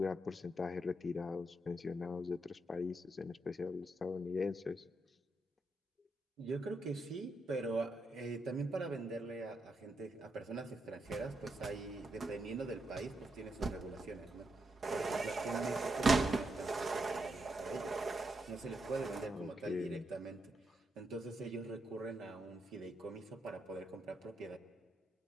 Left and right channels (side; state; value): both; normal; correlation 0.82